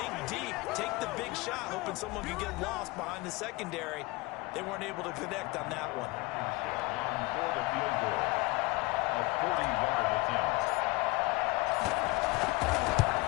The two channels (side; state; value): right; quieter; 23.4 dB